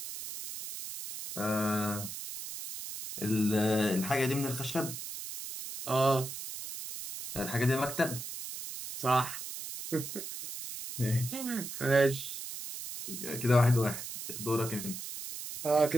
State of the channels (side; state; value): right; noise; hiss, 8 dB below the sound